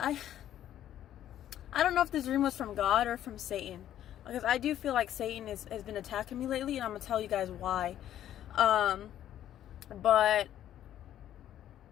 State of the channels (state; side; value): quieter; right; 11.5 dB